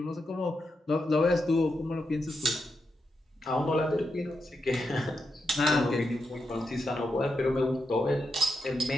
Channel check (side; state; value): both; normal; correlation 0.85